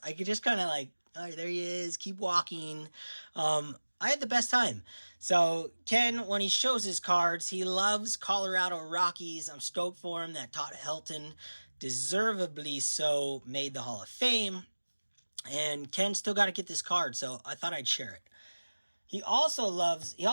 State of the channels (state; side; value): inverted; both; correlation -1.00